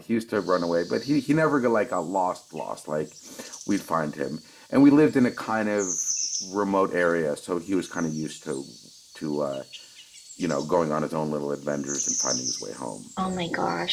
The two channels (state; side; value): identical; both; correlation 1.00